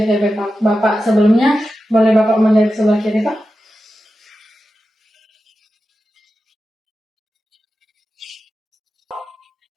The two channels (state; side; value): normal; both; correlation 0.92